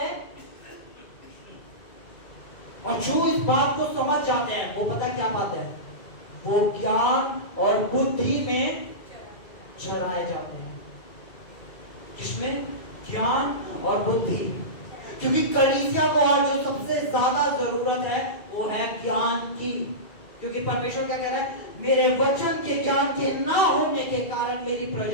और जो इस बात को समझ जाते हैं वो पता क्या पाते हैं? वो ज्ञान और बुद्धि में चराए जाते हैं। किसमें? ज्ञान और बुद्धि। क्योंकि कलीसिया को आज जो सबसे ज्यादा जरूरत है वो है ज्ञान की। क्योंकि परमेश्वर क्या कह रहा है? मेरे वचन के ज्ञान के ना होने के कारण मेरी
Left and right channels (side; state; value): right; late; 2.3 ms